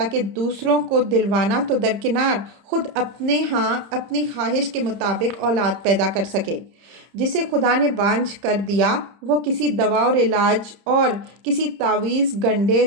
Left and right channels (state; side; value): late; left; 30 ms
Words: کہ دوسروں کو دلوانا تو درکنار خود اپنے ہاں اپنی خواہش کے مطابق اولاد پیدا کر سکے۔ جسے خدا نے بانجھ کر دیا وہ کسی دوا اور علاج اور کسی تعویذ گنڈے